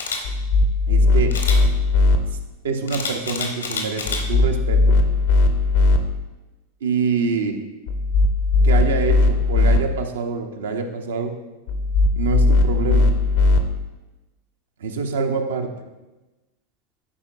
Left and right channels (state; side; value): normal; both; correlation 0.45